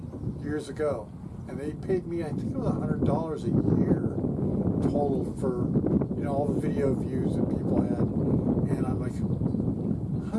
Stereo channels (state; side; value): identical; both; correlation 1.00